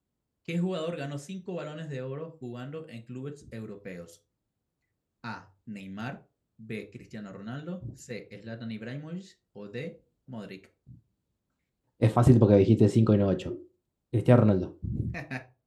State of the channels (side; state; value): both; identical; correlation 1.00